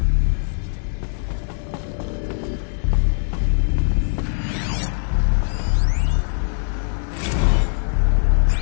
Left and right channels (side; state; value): right; silent; 56 dB below the other